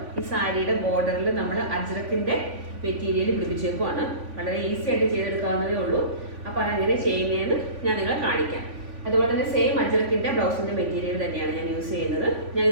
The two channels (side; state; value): left; late; 3.5 ms